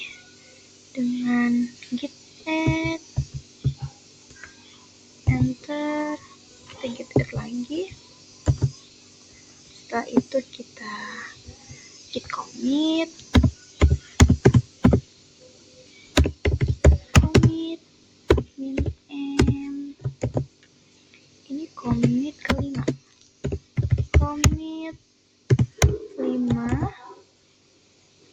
dengan git add, enter, kita git add lagi. Setelah itu kita git commit,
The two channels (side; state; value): both; identical; correlation 1.00